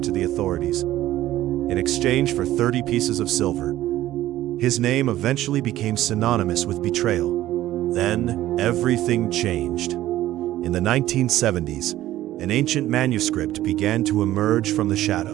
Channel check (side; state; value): left; quieter; 14.4 dB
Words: the authorities in exchange for 30 pieces of silver. His name eventually became synonymous with betrayal. Then, everything changed. In the 1970s, an ancient manuscript began to emerge from the